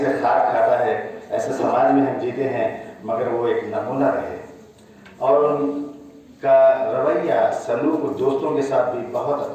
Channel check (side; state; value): both; identical; correlation 1.00